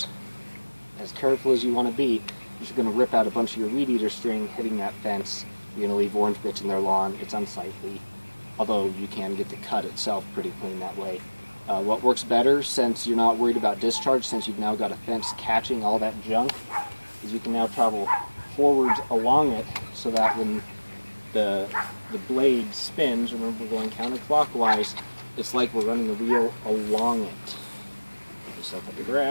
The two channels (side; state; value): both; inverted; correlation -1.00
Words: as careful as you want to be, you're going to rip out a bunch of your weed eater string hitting that fence. You're going to leave orange bits in their lawn. It's unsightly, although you can get the cut itself pretty clean that way. What works better, since you're not worried about discharge, since you've now got a fence catching all that junk, is you can now travel forwards along it so that when the blade spins, remember we're going counterclockwise, it's like we're running a wheel along it. Put yourself up the